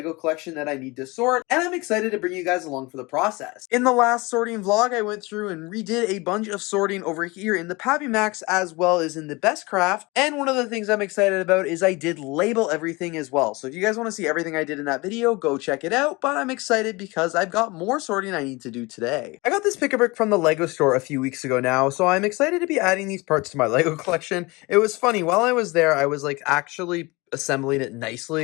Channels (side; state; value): right; quieter; 24.2 dB